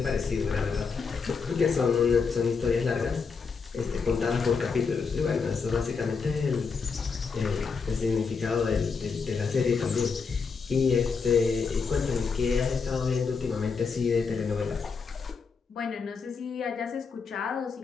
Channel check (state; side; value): quieter; right; 5.3 dB